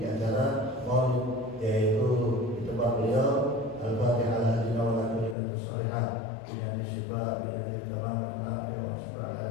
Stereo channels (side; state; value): right; drops out; at 5.4 s